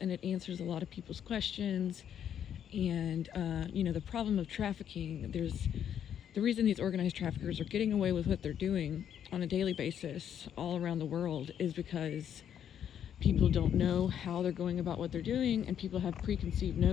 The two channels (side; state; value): right; quieter; 9.3 dB